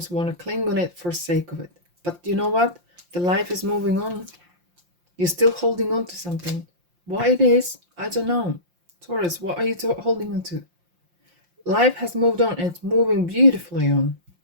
want to cling on it for sake of it. But you know what? The life is moving on. You're still holding on to something. Why it is, I don't know. Taurus, what are you holding on to? Life has moved on and it's moving beautifully on.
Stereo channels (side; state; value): left; late; 5.7 ms